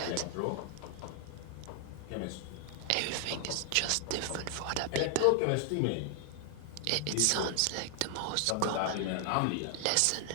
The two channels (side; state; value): both; different; correlation 0.00